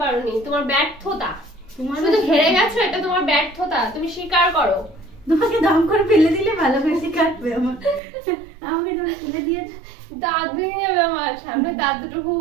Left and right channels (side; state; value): left; drops out; at 8.0 s